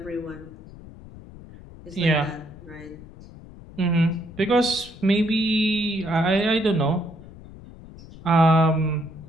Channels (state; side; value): noise; left; rumble, 18 dB below the sound